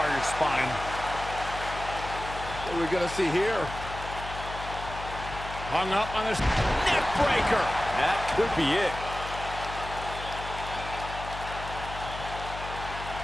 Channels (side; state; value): left; noise; hum, 10 dB below the sound